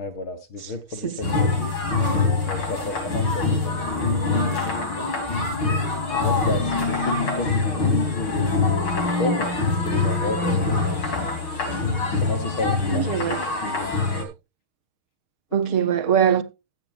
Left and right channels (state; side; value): late; right; 6.4 ms